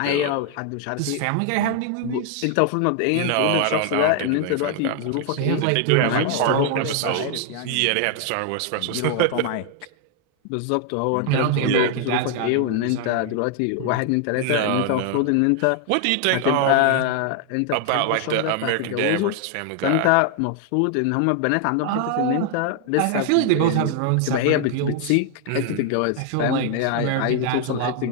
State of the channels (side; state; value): both; different; correlation 0.00